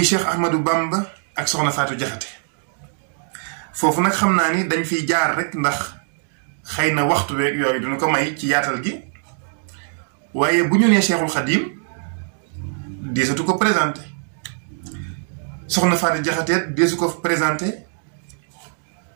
Cheikh Ahmadou Bamba ak Soxna Faatu Jaxate foofu nag xam naa ni dañ fiy jaar rek ndax xëy na waxtu weeg yooyu dina ko may ci yaatal gi waaye bu ñu nee Cheikhul Khadim deesatu ko présenté Soxna Faatu Jaxate deesu ko présenté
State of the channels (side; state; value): left; silent; digital silence